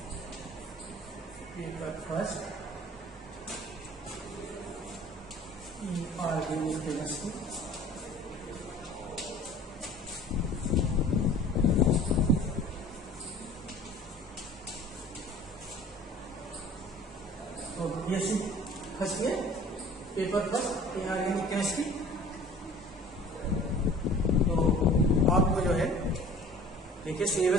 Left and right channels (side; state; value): both; normal; correlation 0.47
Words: paper first inorganic chemistry. तो BSc first year paper first inorganic chemistry. तो आपको जो है देखिए